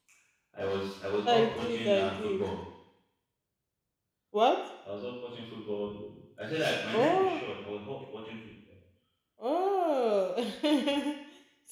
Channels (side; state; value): both; identical; correlation 1.00